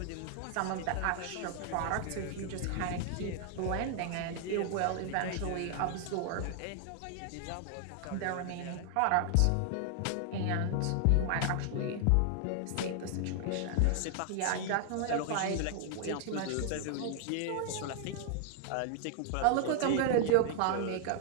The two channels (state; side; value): different; both; correlation 0.00